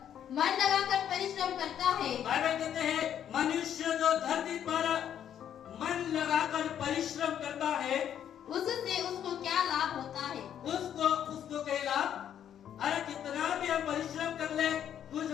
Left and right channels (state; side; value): quieter; right; 9.7 dB